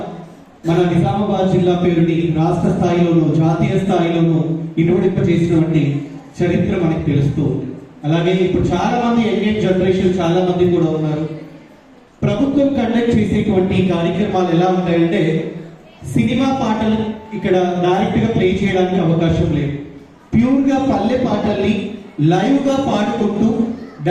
మన నిజామాబాద్ జిల్లా పేరుని రాష్ట్ర స్థాయిలోనూ జాతీయ స్థాయిలోనూ ఇనుమడింప చేసినటువంటి చరిత్ర మనకి తెలుస్తూ ఉంది. అలాగే ఇప్పుడు చాలా మంది యంగ్ జనరేషన్ చాలా మంది కూడా ఉన్నారు. ప్రభుత్వం కండక్ట్ చేసేటువంటి కార్యక్రమాలు ఎలా ఉంటాయంటే సినిమా పాటలు ఇక్కడ డైరెక్ట్ గా ప్లే చేయడానికి అవకాశం లేదు. ప్యూర్ గా పల్లె పాటల్ని లైవ్ గా పాడుకుంటూ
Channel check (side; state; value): both; identical; correlation 1.00